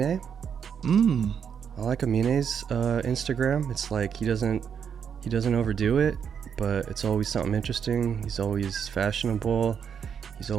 I like Amine's Instagram. It's like he doesn't overdo it, but it's always something interesting. He's always fashionable. He's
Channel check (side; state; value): left; quieter; 7.4 dB